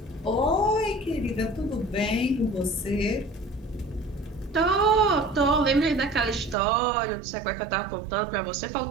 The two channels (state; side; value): drops out; left; at 6.6 s